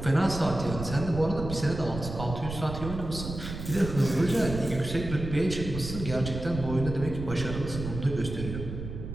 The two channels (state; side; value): noise; right; rumble, 7 dB below the sound